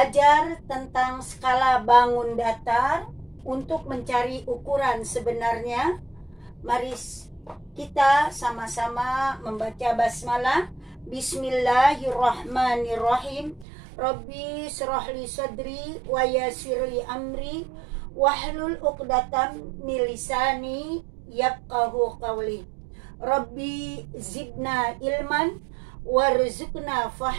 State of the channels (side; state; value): left; drops out; at 13.7 s